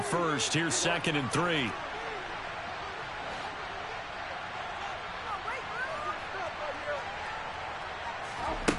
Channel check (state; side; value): identical; both; correlation 1.00